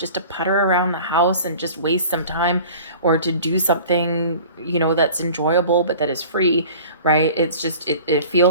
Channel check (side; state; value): both; inverted; correlation -0.43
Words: to putter around the house and just waste some time, or to do something, that's enjoyable, but that is free, right? It's just, it